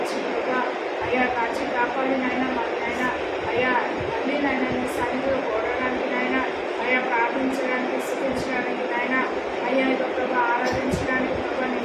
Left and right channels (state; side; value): identical; both; correlation 1.00